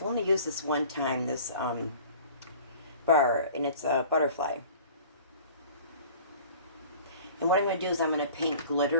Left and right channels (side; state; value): both; inverted; correlation -0.45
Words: only used this one time, this bar, and it's a butterfly. And what I'm going to do is I'm going to paint